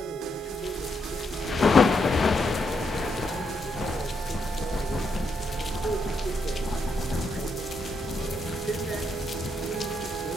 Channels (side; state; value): both; normal; correlation 0.79